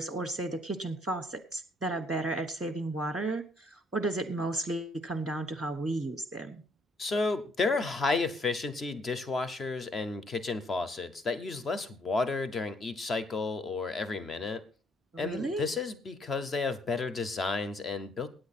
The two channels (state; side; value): normal; both; correlation 0.67